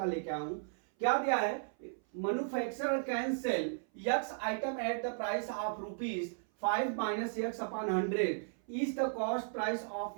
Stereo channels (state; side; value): silent; left; 54 dB below the other